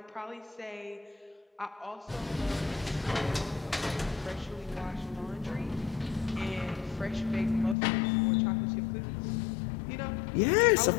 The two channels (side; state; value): right; drops out; at 7.8 s